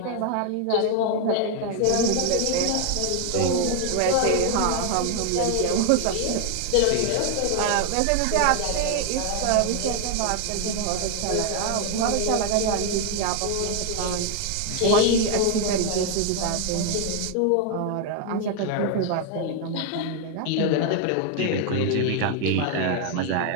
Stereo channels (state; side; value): different; both; correlation 0.00